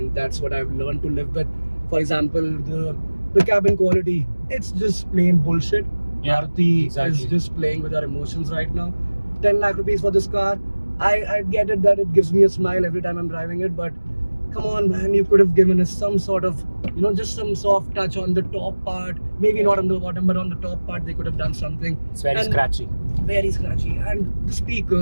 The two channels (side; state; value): both; inverted; correlation -1.00